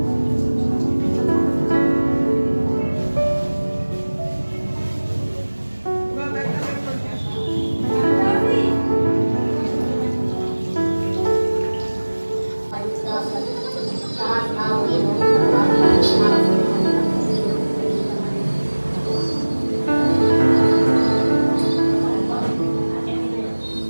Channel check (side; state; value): both; inverted; correlation -1.00